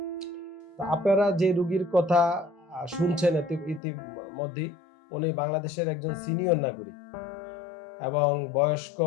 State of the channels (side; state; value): right; drops out; at 3.8 s